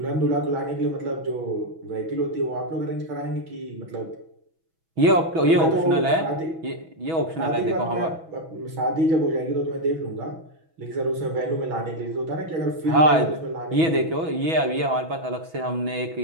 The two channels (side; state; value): left; late; 6.1 ms